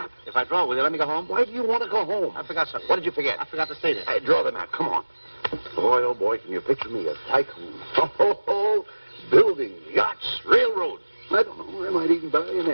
If I draw, will you let me go home? Why do you want to go home? I forgot something. What did you forget? I forgot to say this. Hey, draw the map. Come on. Boy, oh boy, can you picture me a tycoon? Oh, building, yachts, railroads. I don't know. I might even buy an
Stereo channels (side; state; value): both; inverted; correlation -1.00